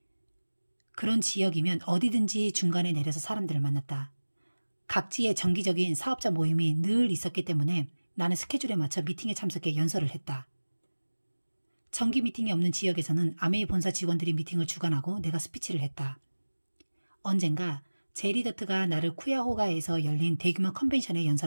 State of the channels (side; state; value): both; inverted; correlation -1.00